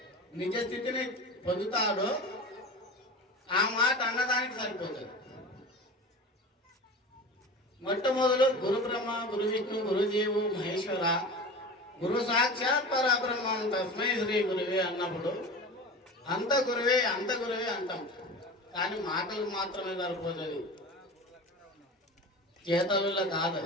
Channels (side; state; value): both; normal; correlation 0.33